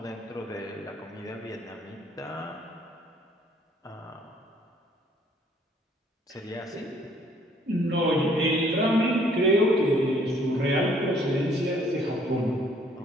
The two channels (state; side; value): normal; both; correlation 0.62